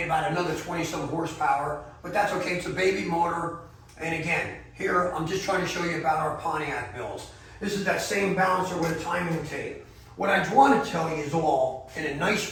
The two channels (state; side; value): identical; both; correlation 1.00